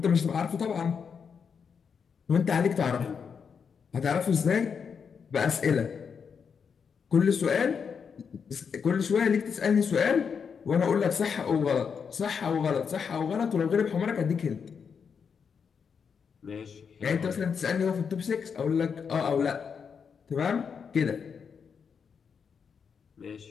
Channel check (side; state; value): right; quieter; 6.4 dB